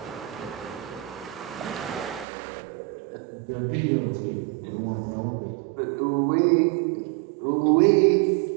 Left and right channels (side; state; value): left; drops out; at 2.2 s